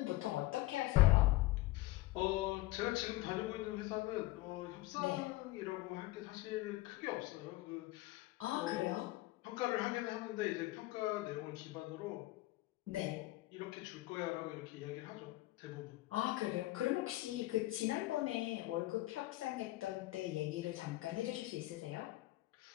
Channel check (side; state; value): right; quieter; 18.6 dB